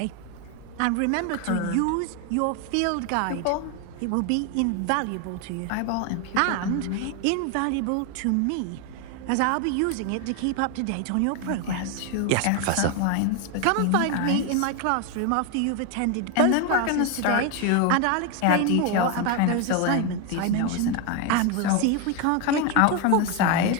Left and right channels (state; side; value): different; both; correlation 0.01